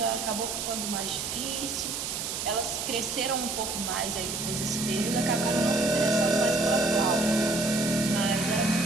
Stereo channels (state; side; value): noise; right; hiss, 4 dB below the sound